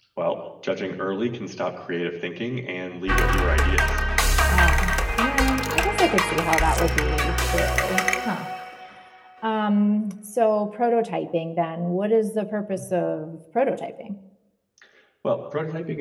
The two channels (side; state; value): both; identical; correlation 1.00